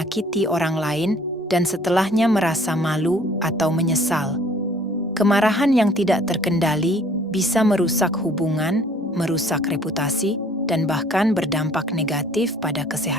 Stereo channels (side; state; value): both; normal; correlation 0.55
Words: orang lain dan setelahnya merasa malu atau menyesal. Kemarahan yang tidak terkendali bisa merusak hubungan, merusak reputasi, dan bahkan berdampak negatif pada